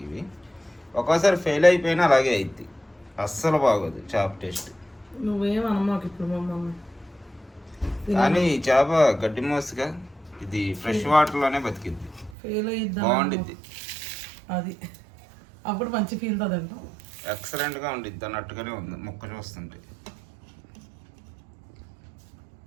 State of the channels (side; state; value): left; drops out; at 12.4 s